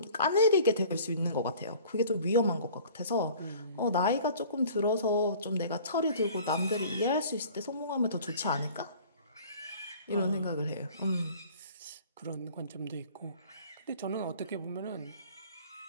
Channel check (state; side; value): inverted; both; correlation -0.48